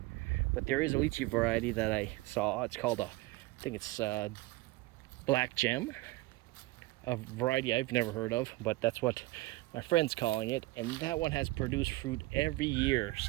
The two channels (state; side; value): quieter; left; 20.0 dB